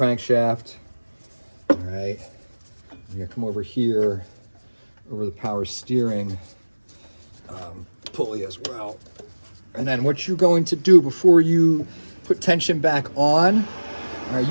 all right? You're gonna come over here, over the power steering pulley as well. And then what you're going to do before you put tension back on, all right,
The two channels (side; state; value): both; inverted; correlation -1.00